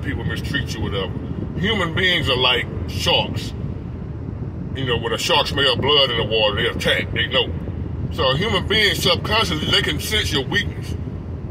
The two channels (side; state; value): both; identical; correlation 1.00